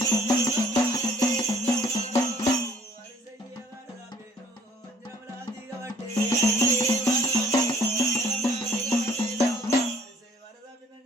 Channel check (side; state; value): both; normal; correlation 0.58